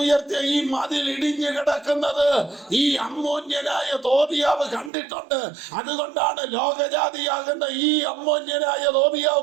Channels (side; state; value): left; drops out; at 4.9 s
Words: ഈ മതിൽ ഇടിഞ്ഞു കിടക്കുന്നത് ഈ അമ്മോന്യനായ തോബിയാവ് കണ്ടിട്ടുണ്ട്. അതുകൊണ്ടാണ് ലോകജാതിയാകുന്ന ഈ അമ്മോന്യനായ തോബിയാവ്